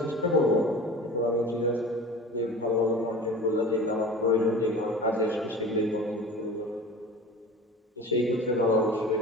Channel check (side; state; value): both; normal; correlation 0.38